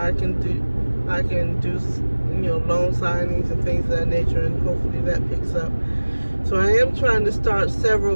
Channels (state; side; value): inverted; both; correlation -1.00